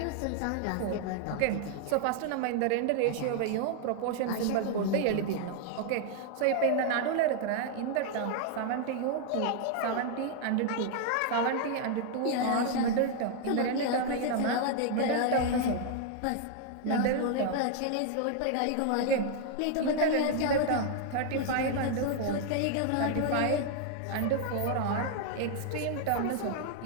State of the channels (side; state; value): both; different; correlation 0.00